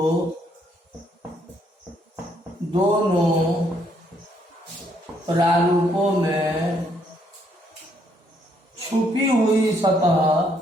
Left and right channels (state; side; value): normal; both; correlation 0.70